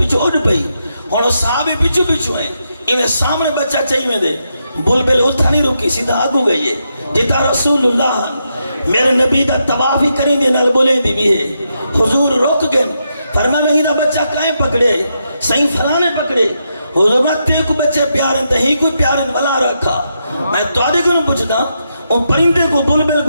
اڑ پئی، اور صحابی پچھو ہیں، انہیں سامنے بچہ چاہیے میں دے، بلبل اتھا نہیں روکی سیدھا آگو گئی ہے جتا رسول اللہ میرے نبی دا تباہ ہی کریں دے نال بولے دی بھی ہے۔ حضور روک گئے، فرمایا میں ہی دا بچہ کائیں پکڑے، صحیح فلانے پکڑے، حضور میں تے کو بچے پیارن تے ہی کوئی پیارن ولا رکھا۔ میں تو آدھے کو نہ پوچھتا ان پرندے کو بلبل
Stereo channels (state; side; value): inverted; both; correlation -0.83